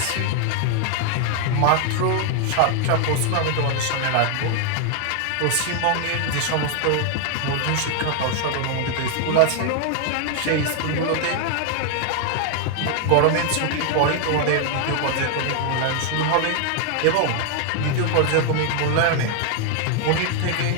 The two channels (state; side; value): different; both; correlation 0.00